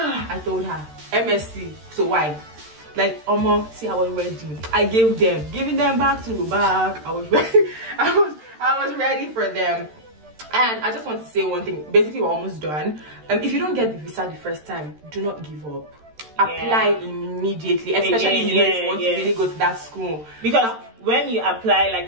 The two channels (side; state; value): left; late; 13 ms